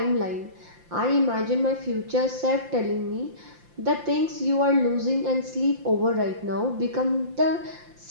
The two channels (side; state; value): left; late; 5.8 ms